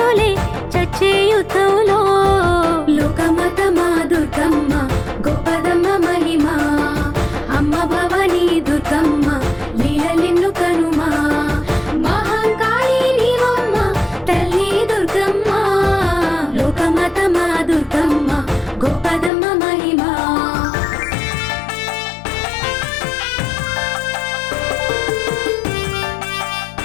చచ్చే యుద్ధంలో. లోకమాతమా దుర్గమ్మ గొప్పదమ్మ మహిమ, అమ్మ భవానీ దుర్గమ్మ లీలలెన్ను కనుమా. మహంకాళి నీవమ్మ తల్లి దుర్గమ్మ, లోకమాతమా దుర్గమ్మ గొప్పదమ్మ మహిమ.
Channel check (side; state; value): right; drops out; at 19.3 s